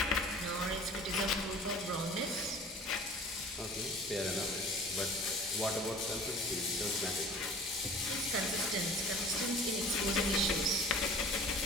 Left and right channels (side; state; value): both; normal; correlation 0.45